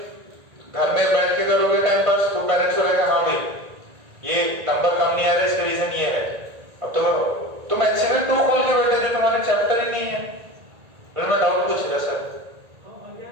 घर में बैठ के करोगे टाइम पास, तो पेरेंट्स को रहेगा हाँ भाई ये नंबर कम नहीं आ रहा, इसका रीजन ये है। अब तुम HCV 2 खोल के बैठे थे, तुम्हारे चैप्टर ही नहीं है। मैं डाउट पूछ रहा सर,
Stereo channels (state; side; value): late; left; 1.9 ms